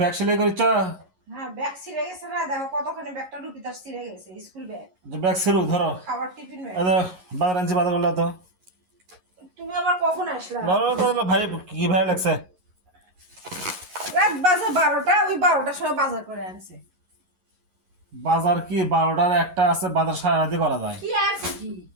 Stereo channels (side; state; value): left; late; 11 ms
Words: সেলাই করিস? হ্যাঁ, ব্যাগ ছিঁড়ে গেছে না, দেখো কতখানি ব্যাগটা রুপিতার ছিঁড়ে গেছে, স্কুল ব্যাগ, যে ব্যাগ সেরু ধরো। খাবার টিফিন ব্যাগ। বাজার আনছি, বাজার করলা তো। তুমি আবার কখন আসলা? ভাই কি ভাই লাগছে? রাত বাজে 12টা, ওই 12টার সময় বাজার করে আনছে। বাজার কি 12টার একটা আছে, বাজার সারা রাতে করা যায়। কি আছে কি?